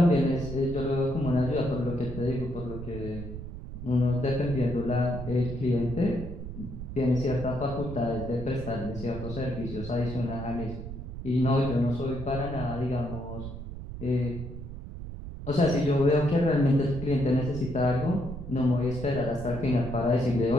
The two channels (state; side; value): noise; right; rumble, 9 dB below the sound